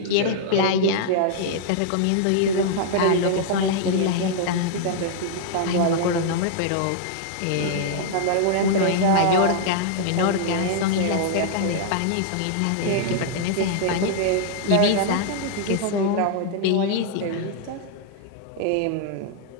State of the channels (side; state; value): both; different; correlation -0.01